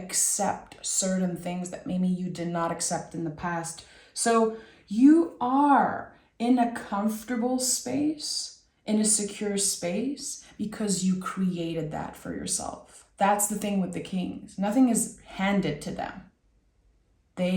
certain things that maybe you did not accept in the past. So you are in a comfortable space, in a secure space, because you created that for yourself. That's the thing with the kings. Nothing is handed to them.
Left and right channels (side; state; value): both; identical; correlation 1.00